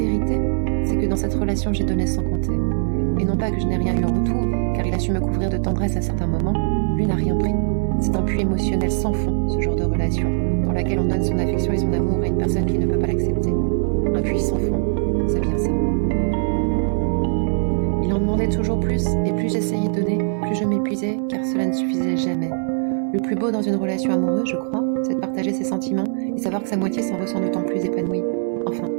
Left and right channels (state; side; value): silent; left; digital silence